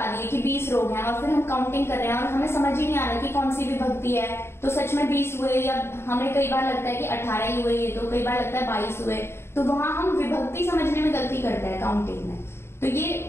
दिए कि 20 रोग हैं, और फिर हम काउंटिंग कर रहे हैं और हमें समझ ही नहीं आ रहा कि कौन सी विभक्ति है, तो सच में 20 हुए या हमें कई बार लगता है कि 18 ही हुए, तो कई बार लगता है 22 हुए, तो वहां हम विभक्ति समझने में गलती करते हैं काउंटिंग में। तो ये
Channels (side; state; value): right; late; 0.12 ms